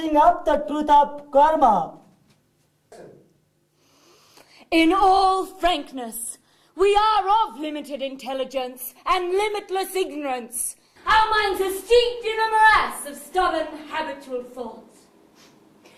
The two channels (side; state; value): both; identical; correlation 1.00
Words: of the truth of karma. In all frankness, we are of limited intelligence and limitless ignorance. Our minds are steeped in a morass of stubborn, habitual thoughts.